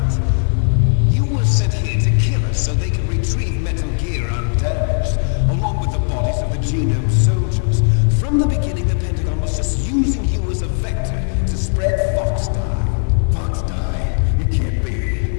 You were sent here to kill us so they could retrieve Metal Gear undamaged, along with the bodies of the Genome soldiers. From the beginning, the Pentagon was just using you as a vector to spread Fox Dye. Fox Dye? It can't be.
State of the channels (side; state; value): right; silent; 58 dB below the other